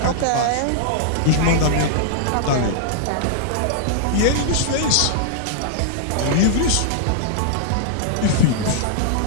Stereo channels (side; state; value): both; different; correlation -0.01